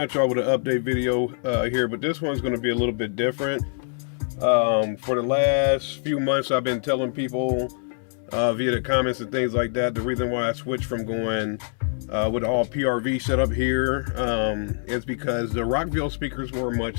at y'all with an update video here, but this one's going to be a little bit different. For the last few months, I've been telling people via the comments and things like that, the reason why I switched from going with all PRV setup here is because the Rockville speakers were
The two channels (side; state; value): right; silent; 62 dB below the other